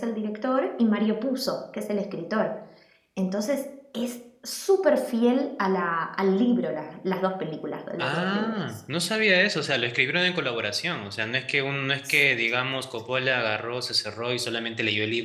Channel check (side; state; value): both; identical; correlation 1.00